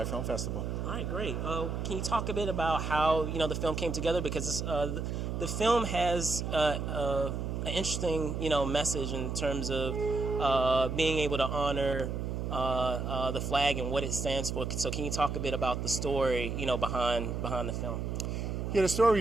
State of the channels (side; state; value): right; noise; hum, 3 dB below the sound